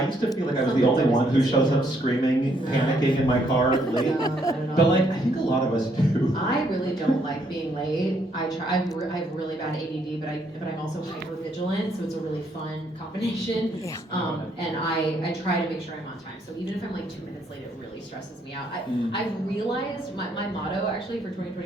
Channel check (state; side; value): normal; both; correlation 0.71